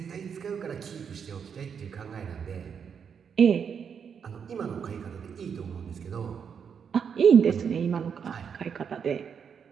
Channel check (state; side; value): quieter; left; 7.0 dB